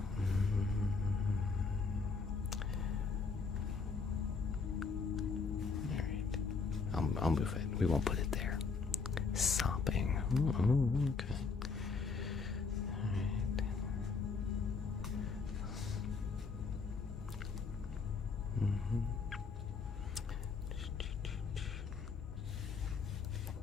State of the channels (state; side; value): quieter; right; 4.8 dB